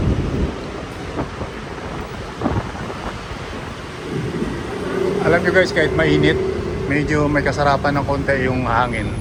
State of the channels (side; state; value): both; identical; correlation 1.00